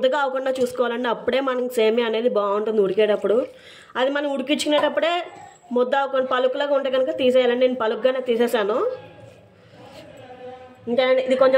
అవ్వకుండా చూసుకోవాలండి. అప్పుడే మనకి సేమియా అనేది బాగుంటుంది ఉడికేటప్పుడు. అది మనం ఉడికించుకునేటప్పుడే ముద్ద అవ్వకుండా పలుకులాగా ఉంటే కనుక తీసేయాలండి. నేను పలుకుగానే తీసేసాను. ఇంకా ఇది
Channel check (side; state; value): both; identical; correlation 1.00